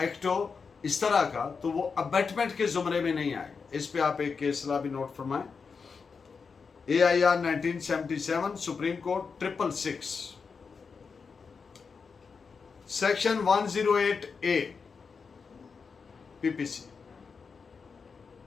एक्ट हो इस तरह का, तो वो अबेटमेंट के जुमरे में नहीं आएगा। इस पे आप एक केस ला भी नोट फरमाएं। AIR 1977 Supreme Court 666 section 108A PPC।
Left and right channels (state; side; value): quieter; right; 5.3 dB